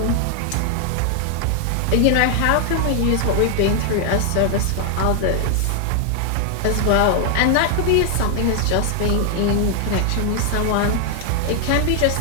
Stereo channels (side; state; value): both; different; correlation 0.00